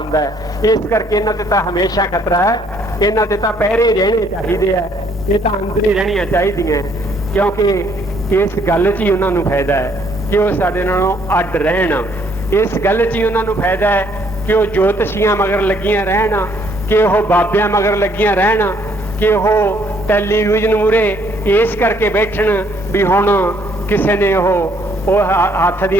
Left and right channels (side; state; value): both; normal; correlation 0.66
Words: ਹੈ। ਇਸ ਕਰਕੇ ਇਹਨਾਂ ਤੇ ਤਾਂ ਹਮੇਸ਼ਾ ਖਤਰਾ ਹੈ, ਇਹਨਾਂ ਤੇ ਤਾਂ ਪਹਿਰੇ ਰਹਿਣੇ ਚਾਹੀਦੇ ਆ। ਇਹ ਤਾਂ ਅੰਦਰ ਹੀ ਰਹਿਣੀਆਂ ਚਾਹੀਦੀਆਂ, ਕਿਉਂਕਿ ਇਸ ਗੱਲ 'ਚ ਹੀ ਉਹਨਾਂ ਨੂੰ ਫਾਇਦਾ ਹੈ ਕਿ ਉਹ ਸਾਡੇ ਨਾਲੋਂ ਅੱਡ ਰਹਿਣ। ਇਸ ਗੱਲ 'ਚ ਹੀ ਉਹਨਾਂ ਨੂੰ ਫਾਇਦਾ ਹੈ ਕਿ ਉਹ ਜੋਤਸ਼ੀਆਂ ਮਗਰ ਲੱਗੀਆਂ ਰਹਿਣ, ਕਿ ਉਹ ਬਾਬਿਆਂ ਮਗਰ ਲੱਗੀਆਂ ਰਹਿਣ, ਕਿ ਉਹ ਟੈਲੀਵਿਜ਼ਨ ਮੂਹਰੇ ਇਸ ਕਰਕੇ ਬੈਠਣ ਵੀ ਹੁਣ ਕਿਸੇ ਨੇ ਉਹ ਹੱਥ